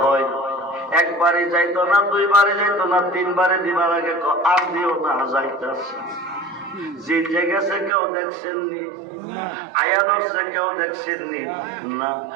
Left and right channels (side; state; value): left; drops out; at 7.9 s